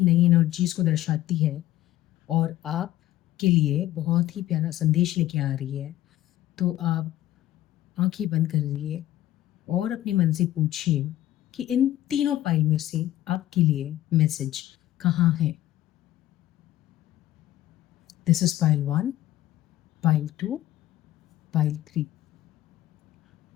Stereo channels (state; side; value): quieter; right; 14.1 dB